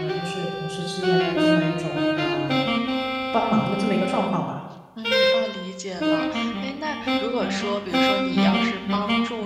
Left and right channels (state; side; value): identical; both; correlation 1.00